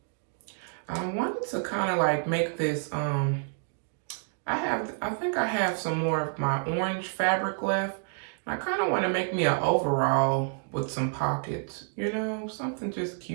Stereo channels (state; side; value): silent; left; 59 dB below the other